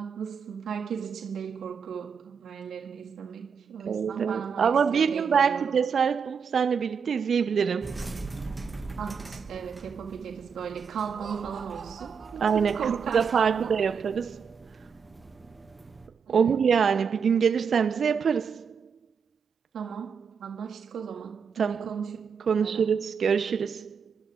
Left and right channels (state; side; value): quieter; left; 6.4 dB